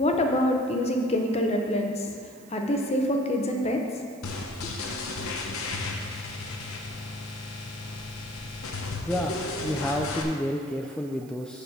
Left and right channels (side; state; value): right; noise; hiss, 24 dB below the sound